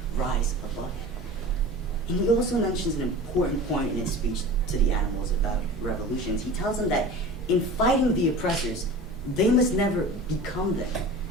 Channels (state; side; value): normal; both; correlation 0.37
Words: rise above it. And he also mentions an important point in his speech to the animals about revolutions. He tells them that in fighting the oppressors, they must never become them.